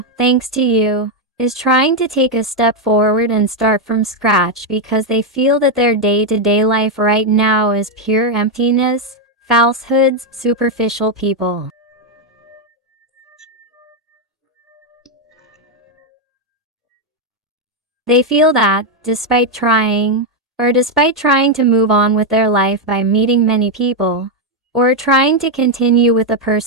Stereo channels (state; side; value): normal; both; correlation 0.03